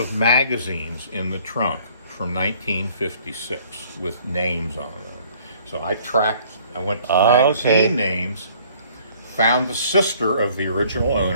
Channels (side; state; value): both; inverted; correlation -0.57